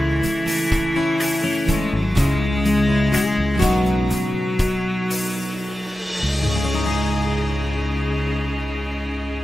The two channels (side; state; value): both; normal; correlation 0.93